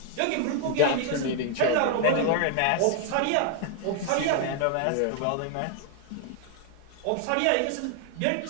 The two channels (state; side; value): different; both; correlation 0.00